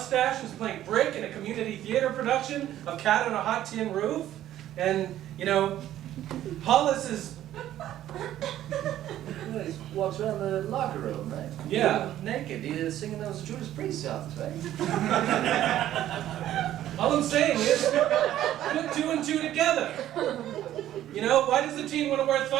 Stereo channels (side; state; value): left; quieter; 12.6 dB